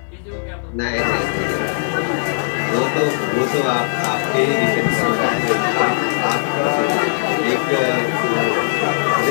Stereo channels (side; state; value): right; silent; digital silence